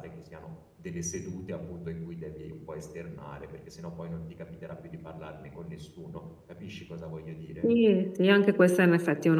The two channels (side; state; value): both; identical; correlation 1.00